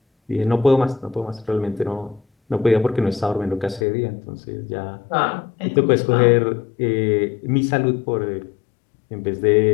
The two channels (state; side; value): drops out; right; at 3.9 s